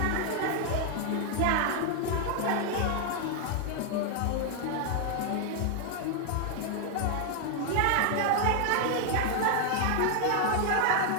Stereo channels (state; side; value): different; both; correlation 0.00